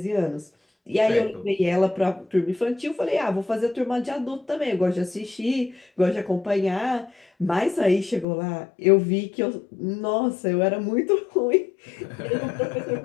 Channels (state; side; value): drops out; right; at 8.2 s